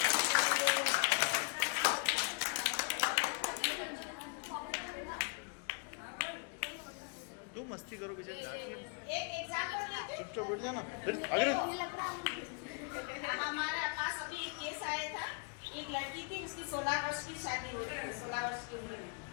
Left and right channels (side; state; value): right; quieter; 39.6 dB